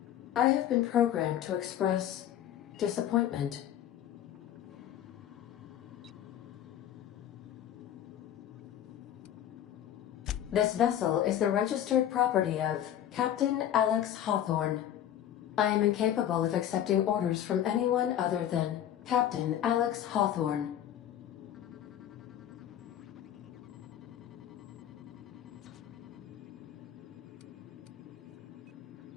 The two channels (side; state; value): right; quieter; 10.9 dB